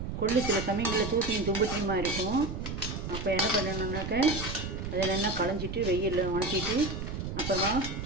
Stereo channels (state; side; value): noise; right; rumble, 6 dB below the sound